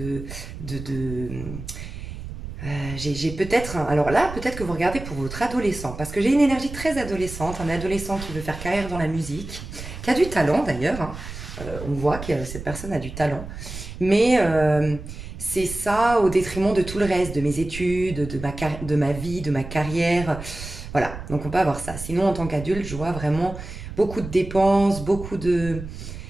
j'ai peut-être, alors là, peut-être que vous regardez pour votre adolescent, parce que j'ai une énergie très adolescente, un adolescent qui veut faire carrière dans la musique, qui a du talent d'ailleurs, hein. On voit que cette personne a du talent, mais c'est ça au détriment de tout le reste, de mes études, de ma vie, de ma carrière, voilà, donc on peut avoir ça. Sinon, en tant qu'adulte, je vois vraiment beaucoup de dépenses, beaucoup de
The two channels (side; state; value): right; noise; rumble, 10 dB below the sound